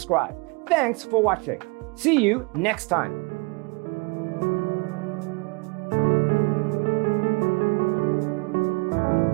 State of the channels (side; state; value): left; quieter; 28.6 dB